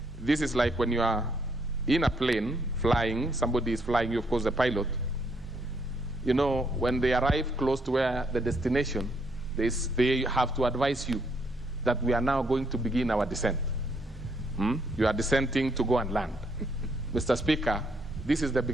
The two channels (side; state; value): both; normal; correlation 0.72